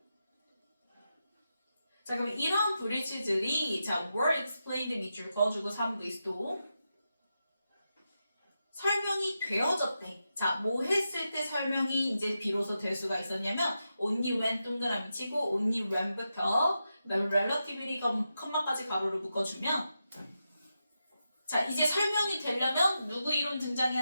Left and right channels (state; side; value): inverted; both; correlation -0.88